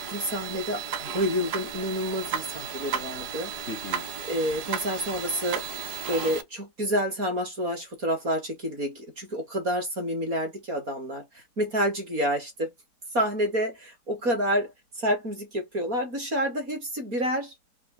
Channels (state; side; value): late; left; 4.2 ms